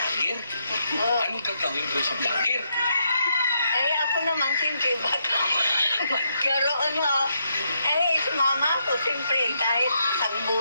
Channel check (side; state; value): both; inverted; correlation -0.78